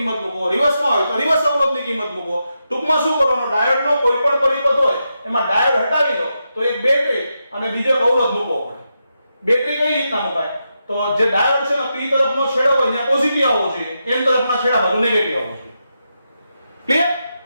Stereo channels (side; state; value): both; inverted; correlation -0.86